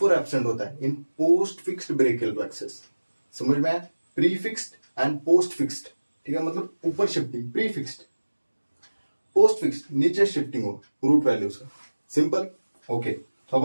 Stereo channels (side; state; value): both; inverted; correlation -1.00